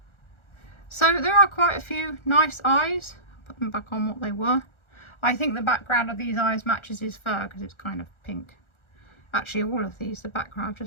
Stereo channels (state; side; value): late; right; 1.4 ms